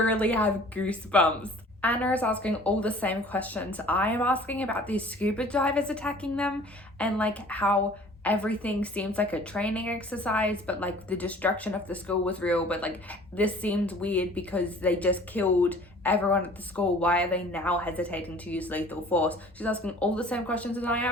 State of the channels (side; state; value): both; normal; correlation 0.49